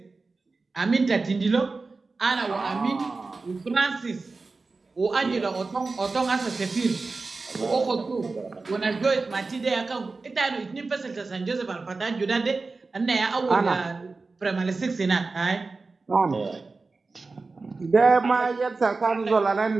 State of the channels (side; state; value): left; quieter; 3.9 dB